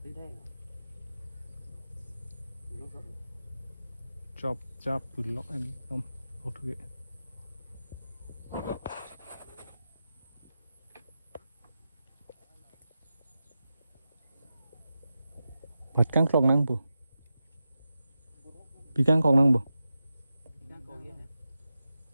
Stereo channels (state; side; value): inverted; both; correlation -0.91